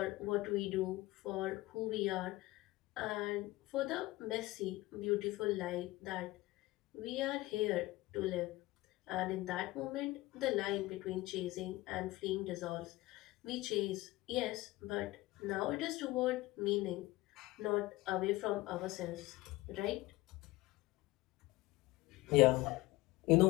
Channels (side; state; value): right; quieter; 19.0 dB